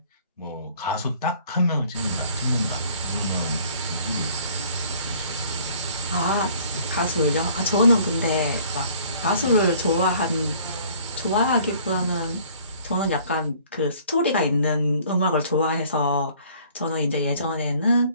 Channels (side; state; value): both; inverted; correlation -0.55